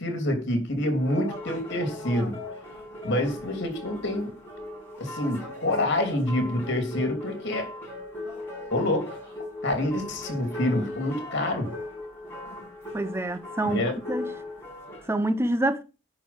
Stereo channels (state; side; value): normal; both; correlation 0.47